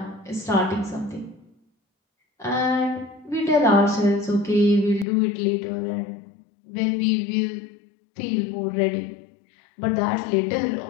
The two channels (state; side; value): drops out; right; at 5.1 s